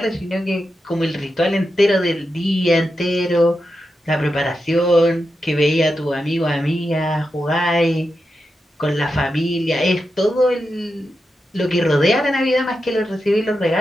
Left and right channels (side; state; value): both; normal; correlation 0.88